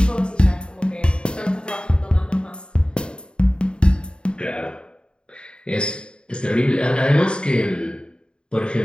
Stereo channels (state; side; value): late; right; 0.052 ms